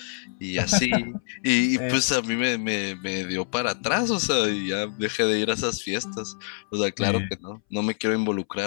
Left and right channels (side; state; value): right; silent; 61 dB below the other